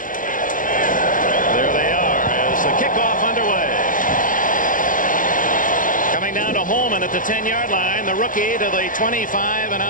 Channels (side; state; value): right; late; 0.39 ms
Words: There they are as the kickoff underway. Coming down to Holman at the 10-yard line. The rookie to the 25 and